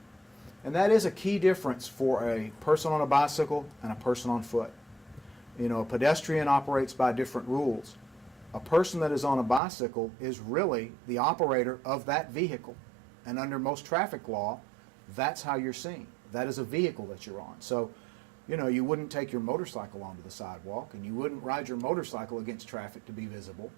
And that is a key difference for a person on a bicycle and a person on foot. You know, a pedestrian operates by different rules. A person that is on a bicycle is really the operator of that vehicle. And under most traffic law, that's how you're seen. That is a vehicle that you're on. So, you know, you wouldn't take your motorcycle onto the sidewalk, and you wouldn't ride your motorcycle against traffic to be visible.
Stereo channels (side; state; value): left; drops out; at 9.6 s